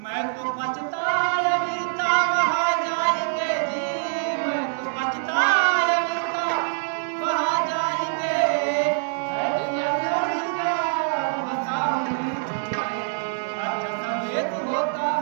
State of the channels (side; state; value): left; silent; digital silence